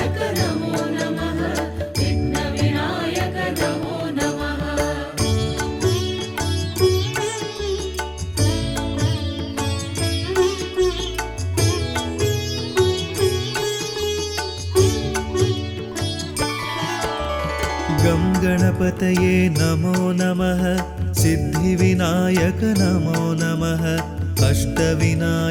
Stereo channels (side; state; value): both; identical; correlation 1.00